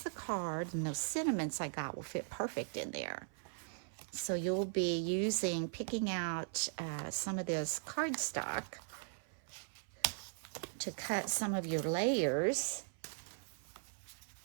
the card, and those sentiments I got will fit perfect in there. So you'll be picking out some of this cardstock to cut some of your layers.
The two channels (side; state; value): left; silent; 52 dB below the other